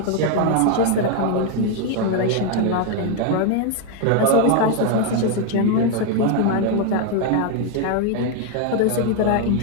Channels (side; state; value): both; different; correlation 0.01